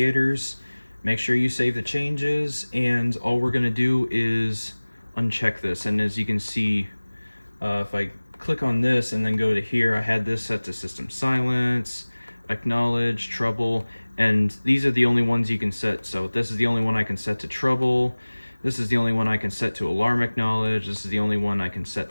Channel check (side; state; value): both; inverted; correlation -1.00